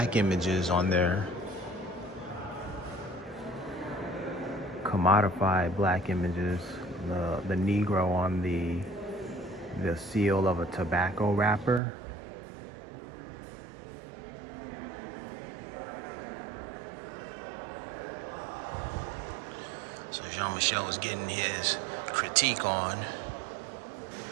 images on there, commodified black images the Negro on the seal of a tobacco wrapper. So Jean-Michel was getting his critique on.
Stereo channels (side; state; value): left; drops out; at 11.8 s